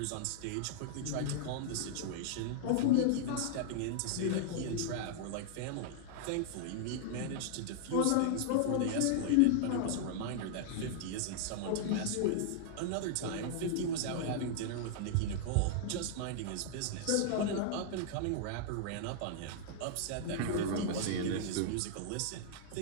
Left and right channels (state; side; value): different; both; correlation -0.01